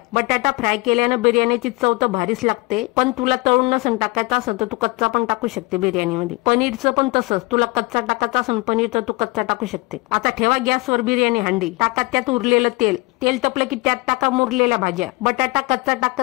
बटाटा फ्राय केल्याने बिर्याणीची चव तर भारीच लागते, पण तुला तळून नसन टाकायचं असं तर तू कच्चा पण टाकू शकते बिर्याणीमध्ये। पनीरचं पण तसंच, तुला कच्चा टाकायचं असेल पनीर तर तू कच्चा टाकू शकते। आता ठेवा गॅसवर बिर्याणी हंडी। टाका त्यात उरलेलं तेल। तेल तपलं की त्यात टाका मुरलेल्या भाज्या। बटाटा कच्चा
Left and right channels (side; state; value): right; quieter; 25.3 dB